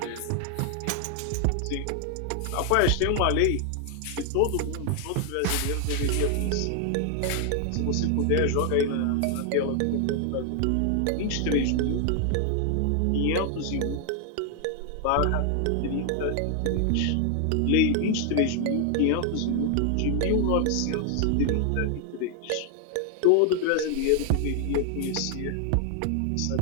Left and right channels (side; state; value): both; different; correlation 0.00